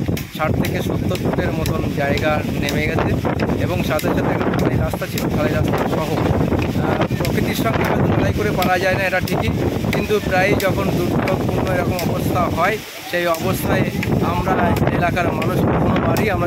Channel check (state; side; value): identical; both; correlation 1.00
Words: 60 থেকে 70 ফুটের মতন জায়গা নেমে গেছে এবং সাথে সাথে খালি রাস্তা ছিল, খালি রাস্তা সহ। প্রকৃতির সঙ্গে হয়তো লড়াই করে পারা যায় না, এটা ঠিকই, কিন্তু প্রায় যখন দুর্যোগপূর্ণ এরকম অবস্থা হয় সেই অবস্থায় আমরা এলাকার মানুষ কোনোবারই